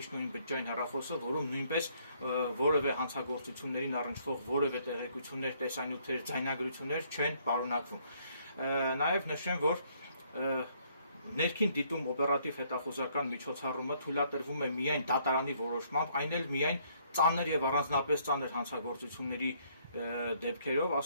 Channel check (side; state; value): both; inverted; correlation -0.67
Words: ու իմ բջջային հեռախոսը, որում նույնպես որևէ հանցագործություններին առնչվող որևէ տեղեկություններ, տեսանյութեր, ձայնագրություններ չեն պարունակվում։ Նաև նշեմ, որ ներքին դիտում օպերատիվ հետախուզական միջոցառումը թույլատրվում է միայն դատարանի որոշմամբ, այն էլ միայն ծանր եւ առանձնապես ծանր հանցագործությունների դեպքերով,